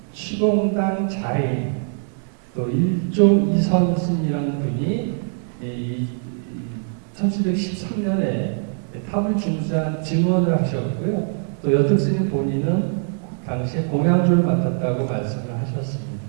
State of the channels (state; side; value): silent; left; 56 dB below the other